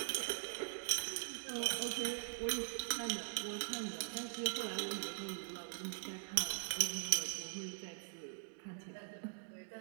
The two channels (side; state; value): left; silent; digital silence